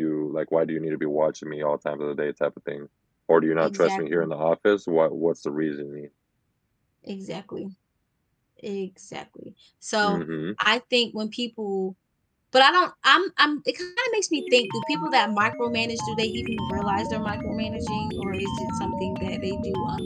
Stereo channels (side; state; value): both; identical; correlation 1.00